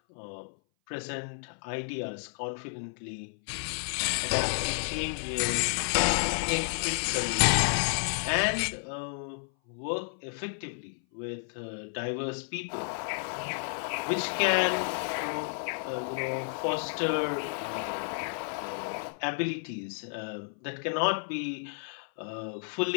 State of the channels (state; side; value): silent; right; 57 dB below the other